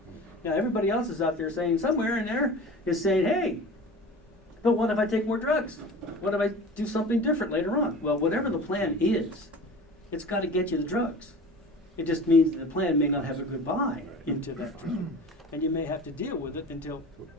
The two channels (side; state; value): both; normal; correlation 0.37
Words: Now, everybody else is out there saying, somewhere in there is saying, hey, but what if I take more drugs? What if I do something different later on? Well, whatever the plan is, it's got to get you the drugs. It just means that the plan may not have a good buy into that drug. And you may have to deal with it until,